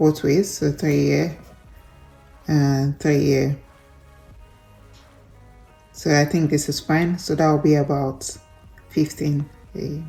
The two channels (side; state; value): both; identical; correlation 1.00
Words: ways, so 3 here and 3 here. So I think this is fine. So that will be about 15.